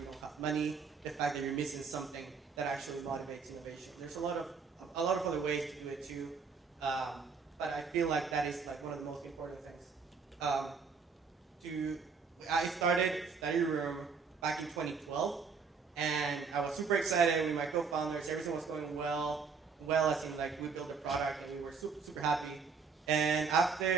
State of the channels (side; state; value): left; quieter; 5.3 dB